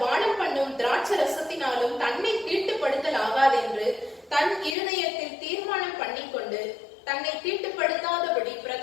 பானம் பண்ணும் திராட்சை ரசத்தினாலும் தன்னை தீட்டுப்படுத்தல் ஆகாதென்று தன் இருதயத்தில் தீர்மானம் பண்ணிக்கொண்டு தன்னை தீட்டுப்படுத்தாதபடி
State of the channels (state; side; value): drops out; right; at 4.8 s